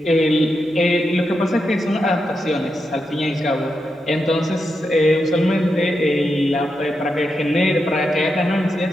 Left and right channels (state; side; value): normal; both; correlation 0.86